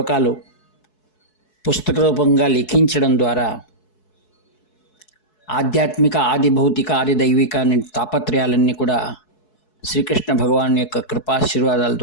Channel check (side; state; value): right; late; 4.7 ms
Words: పుస్తక రూపంగా లిఖించడం ద్వారా ఆధ్యాత్మిక, ఆది భౌతిక, ఆది దైవిక అనే తాపత్రయాలన్నీ కూడా శ్రీకృష్ణ భగవాన్ యొక్క కృపాశీర్వాదాల